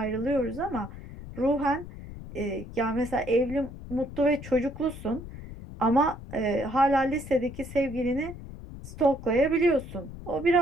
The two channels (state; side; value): noise; left; rumble, 13 dB below the sound